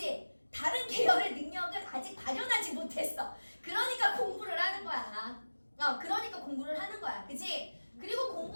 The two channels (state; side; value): inverted; both; correlation -1.00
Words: 다른 계열의 능력을 아직 발현하지 못했어. 그러니까 공부를 하는 거야. 그러니까 공부를 하는 거야. 그치? 그리고